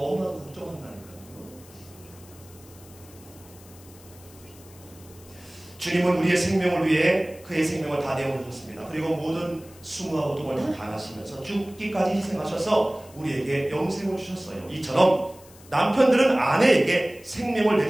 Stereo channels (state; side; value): noise; left; hiss, 23 dB below the sound